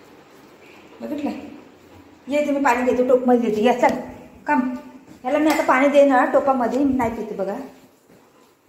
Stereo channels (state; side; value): identical; both; correlation 1.00